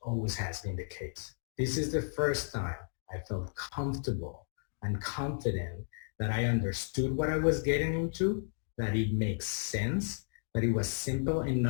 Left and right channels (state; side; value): silent; right; digital silence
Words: always has been the case. This is the first time I felt comfortable and confident that I understood what I was getting into, that it makes sense, that it was simple